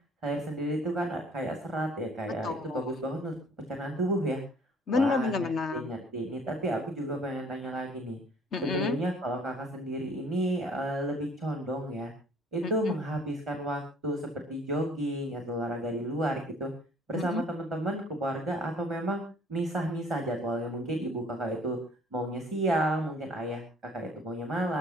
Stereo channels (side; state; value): both; normal; correlation 0.55